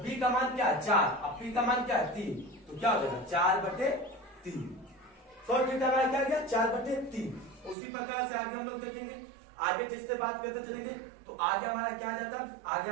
B का मान क्या है 4, अब P का मान क्या है 3, तो क्या हो जाएगा 4/3। cot थीटा हमारा क्या गया 4/3। उसी प्रकार से आगे हम लोग देखेंगे, आगे जिससे बात करते चलेंगे तो आगे हमारा क्या आ जाता है, आगे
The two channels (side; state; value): left; drops out; at 7.8 s